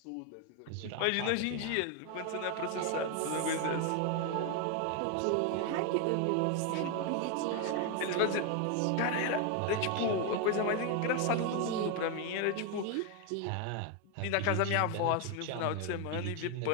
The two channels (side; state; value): both; different; correlation 0.01